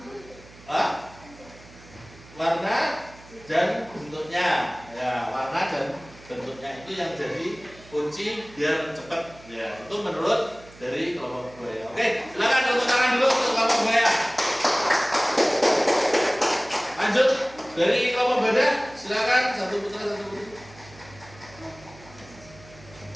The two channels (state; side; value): noise; right; hum, 22 dB below the sound